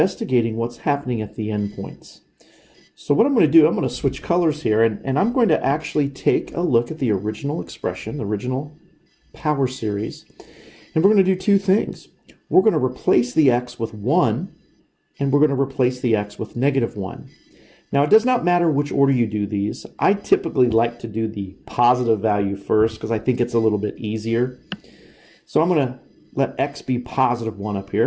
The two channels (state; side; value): identical; both; correlation 1.00